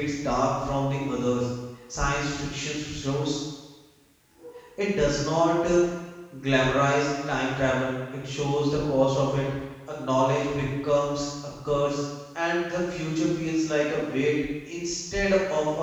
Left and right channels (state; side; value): identical; both; correlation 1.00